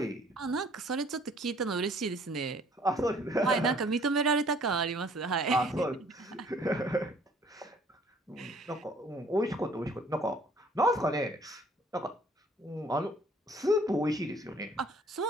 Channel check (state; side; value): normal; both; correlation 0.58